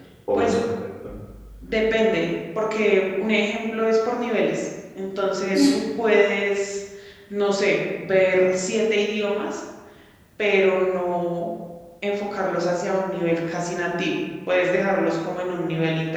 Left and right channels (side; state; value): both; identical; correlation 1.00